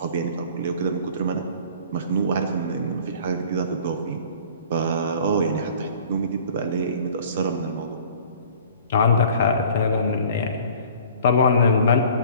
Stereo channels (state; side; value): inverted; both; correlation -0.48